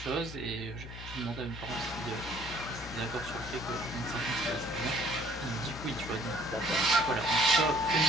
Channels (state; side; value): noise; left; hum, 11 dB below the sound